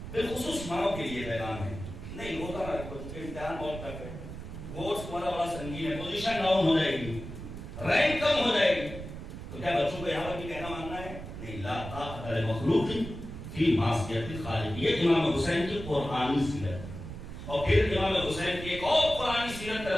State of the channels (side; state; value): right; noise; rumble, 10 dB below the sound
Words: بالخصوص ماں کے لیے پیغام ہے نہیں ہوتا نا بچوں کے امتحان بہت ٹف ہے، کورس تمہارا بڑا سنگین ہے، پوزیشن ڈاؤن ہو جائے گی، رینک کم ہو جائے گی، تو کیا بچوں کو یہاں پر بھی کہنا ماننا ہے؟ نہیں. لا طاقت لمخلوق فی معصیت الخالق، یہ امام حسین کی قرآنی سیرت. اور پھر امام حسین کی ایک اور قرآنی سیرت کا